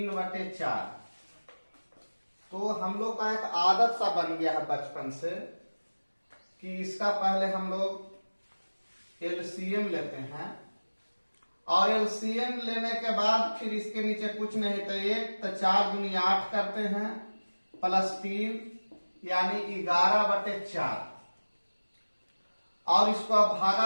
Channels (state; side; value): inverted; both; correlation -1.00